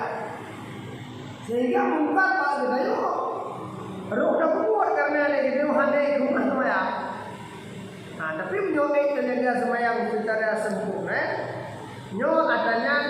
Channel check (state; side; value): identical; both; correlation 1.00